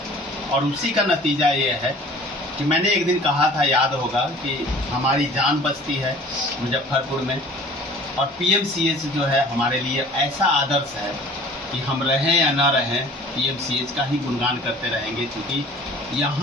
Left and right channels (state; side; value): normal; both; correlation 0.47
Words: और उसी का नतीजा ये है कि मैंने एक दिन कहा था, याद होगा, कि हमारी जान बचती है मुजफ्फरपुर में, और PMCH जो है हमारे लिए ऐसा आदर्श है कि हम रहें या ना रहें PMCH का ही गुणगान करते रहेंगे, क्योंकि